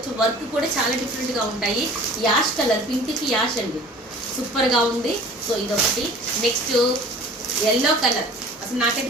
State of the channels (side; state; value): both; normal; correlation 0.45